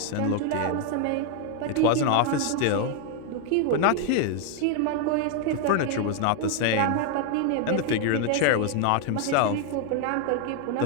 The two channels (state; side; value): different; both; correlation 0.00